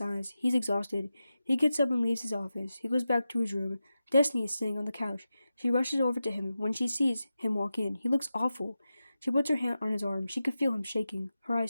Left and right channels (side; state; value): both; inverted; correlation -0.92